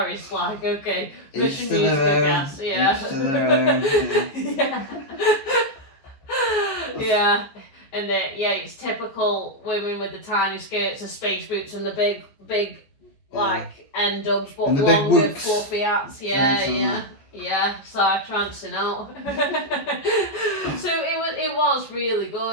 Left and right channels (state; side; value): late; right; 14 ms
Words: like okay, mission needs to gas. And it's typical women with the tiny skirts, the space boots, and the big like end dubs, but longer fluffy hats. Side trancing out. So it was really